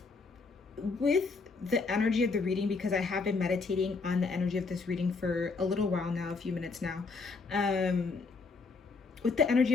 the energy of the reading, because I have been meditating on the energy of this reading for a little while now, a few minutes now. With the energy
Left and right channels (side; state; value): right; quieter; 4.3 dB